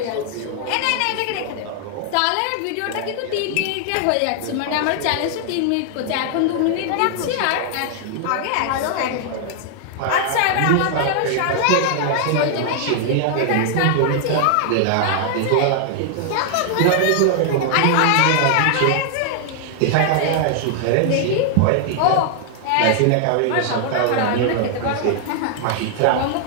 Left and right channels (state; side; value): different; both; correlation 0.00